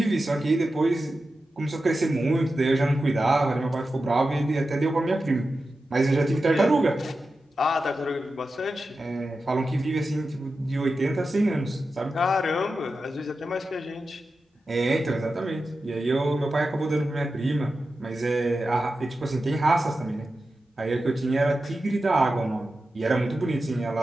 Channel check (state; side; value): normal; both; correlation 0.92